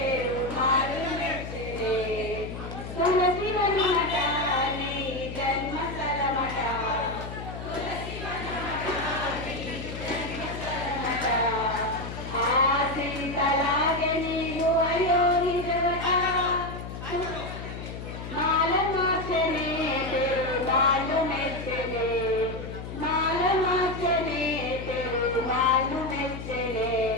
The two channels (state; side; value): noise; left; hum, 9 dB below the sound